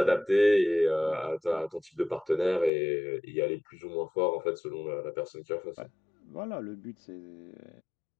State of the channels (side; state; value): right; drops out; at 2.7 s